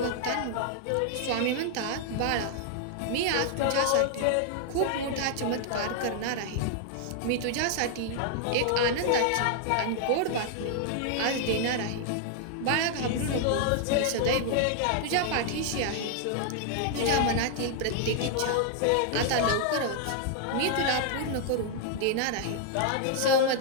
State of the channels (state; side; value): different; both; correlation 0.00